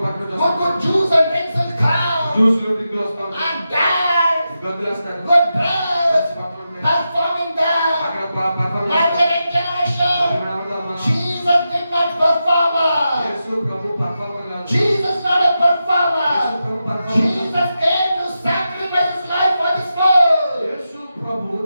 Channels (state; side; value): inverted; both; correlation -0.89